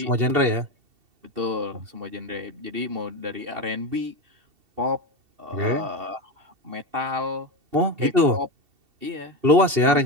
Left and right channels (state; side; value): late; left; 2.7 ms